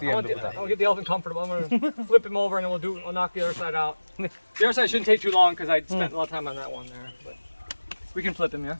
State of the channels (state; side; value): inverted; both; correlation -1.00